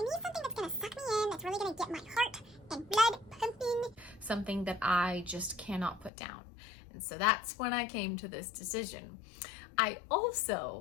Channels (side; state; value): right; drops out; at 6.1 s